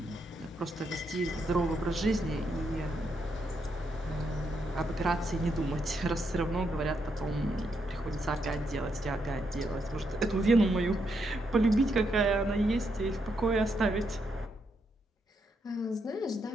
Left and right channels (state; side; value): normal; both; correlation 0.79